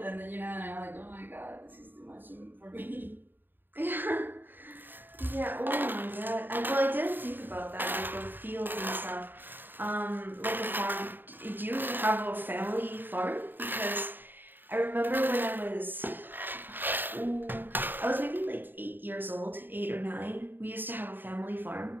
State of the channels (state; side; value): late; left; 0.093 ms